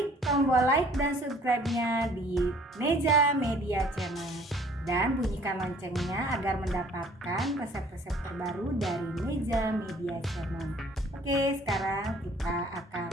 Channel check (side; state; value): both; normal; correlation 0.55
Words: tombol like dan subscribe-nya di Neja Media Channel dan bunyikan loncengnya agar mendapatkan resep-resep terbaru dari Neja Media Channel. Oke, sekarang kita akan